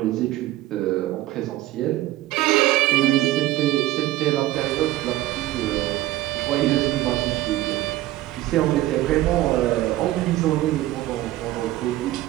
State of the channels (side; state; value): left; quieter; 15.6 dB